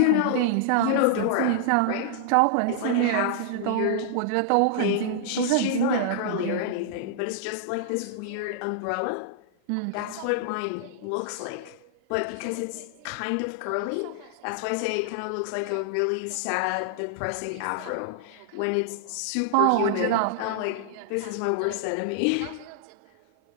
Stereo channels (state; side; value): different; both; correlation -0.01